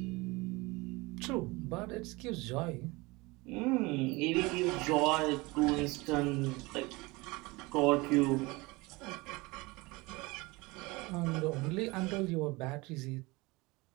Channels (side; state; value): left; quieter; 23.7 dB